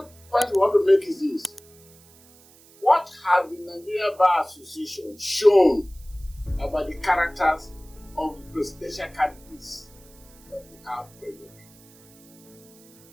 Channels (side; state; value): right; noise; hiss, 26 dB below the sound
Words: point we want to make is this. What has the Nigerian Bar Association shown about the characters of the presidential candidates that we have presently?